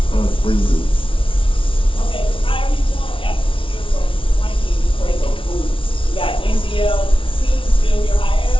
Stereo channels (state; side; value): late; right; 0.25 ms